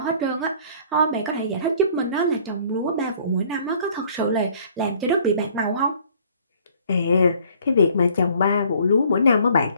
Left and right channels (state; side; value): inverted; both; correlation -0.57